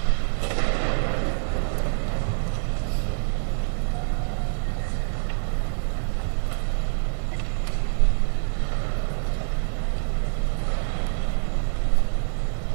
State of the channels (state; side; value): silent; left; digital silence